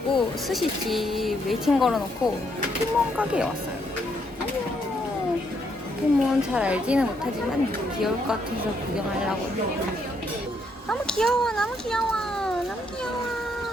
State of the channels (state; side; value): normal; both; correlation 0.74